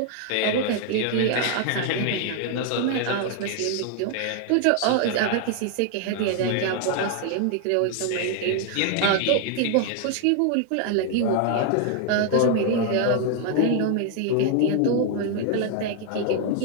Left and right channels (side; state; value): both; different; correlation 0.00